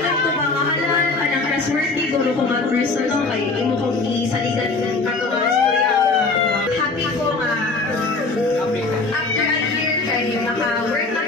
ko ba mahalal ka ng trustworthy guro ko mag-personal kay imo kong isaligan ka mga storya. Happy ko nga. After a year kay naka-work na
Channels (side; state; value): right; quieter; 3.7 dB